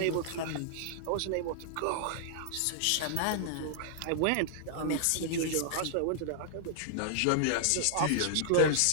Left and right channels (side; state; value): both; different; correlation -0.01